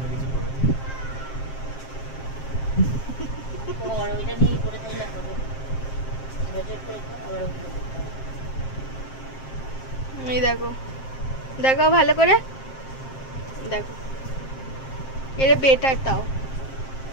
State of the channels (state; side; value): late; right; 7.5 ms